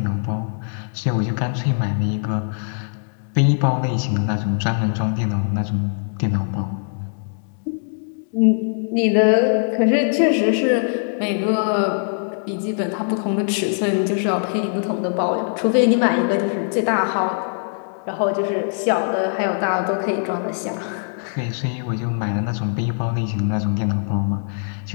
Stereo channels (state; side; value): silent; right; digital silence